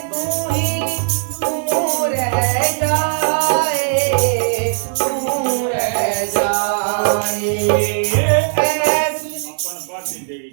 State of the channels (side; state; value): left; silent; digital silence